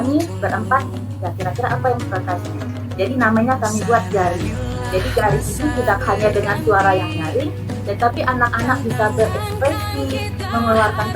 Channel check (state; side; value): identical; both; correlation 1.00